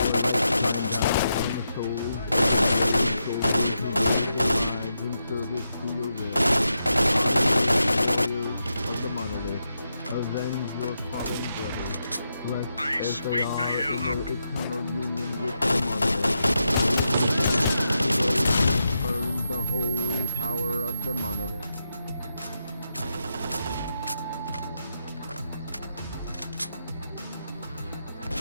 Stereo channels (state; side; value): inverted; both; correlation -0.85